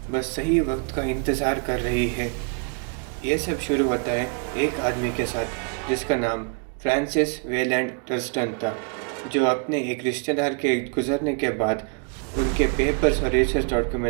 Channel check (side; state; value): left; quieter; 38.4 dB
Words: बस सही वक्त का इंतज़ार कर रही है। ये सब शुरू होता है एक आदमी के साथ जिसका नाम फ्रांसिस वेलैंड टर्स्टन था, जो अपने एक रिश्तेदार के गुजरने के बाद उनके पेपर्स और रिसर्च